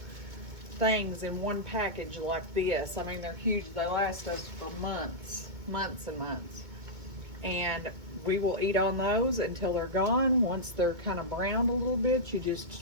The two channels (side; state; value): left; late; 2.2 ms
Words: things in one package like this. I mean, they're huge. They last us for months and months. And we will eat on those until they're gone. Once they're kind of browned a little bit, you